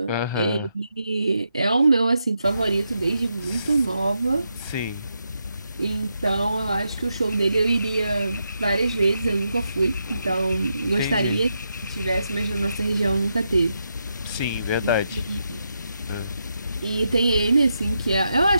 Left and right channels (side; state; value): both; inverted; correlation -0.84